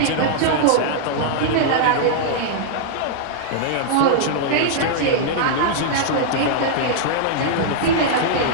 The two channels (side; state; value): both; different; correlation -0.01